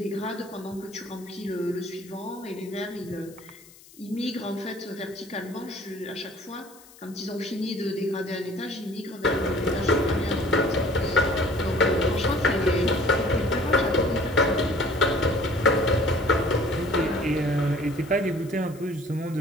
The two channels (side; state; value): left; noise; hiss, 23 dB below the sound